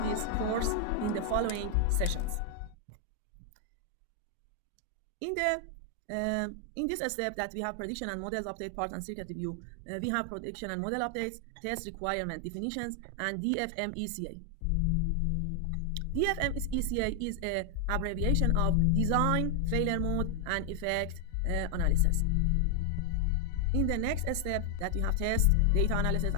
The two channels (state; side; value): different; both; correlation 0.00